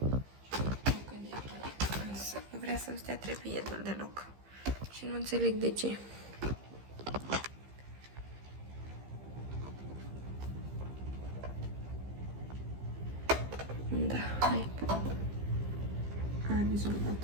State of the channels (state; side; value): late; left; 15 ms